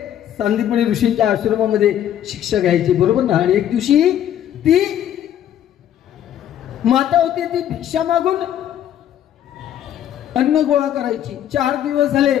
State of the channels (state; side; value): quieter; right; 10.7 dB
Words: सांदीपनी ऋषींच्या आश्रमामध्ये शिक्षा घ्यायची, बरोबर ना. आणि एक दिवशी ती माता होती, ती भिक्षा मागून अन्न गोळा करायची. 4 दिवस झाले,